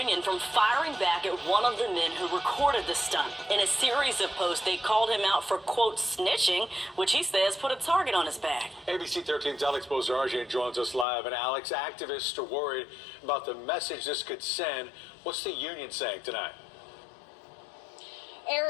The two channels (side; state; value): right; drops out; at 11.1 s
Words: from firing back at one of the men who recorded the stunt. In a series of posts, they called him out for, quote, snitching, which he says put a target on his back. ABC 13's Alex Bozargian joins us live. And Alex, activists are worried about the message this could send. What's the union saying tonight?